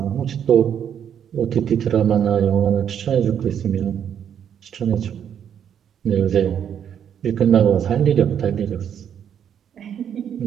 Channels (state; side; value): quieter; left; 8.8 dB